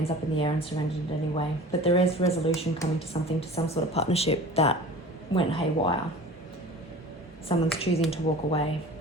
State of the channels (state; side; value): normal; both; correlation 0.41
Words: up in the air and surrendered it anyway. But there is resolution coming to something, to some sort of partnership that went haywire. Someone's choosing to walk away.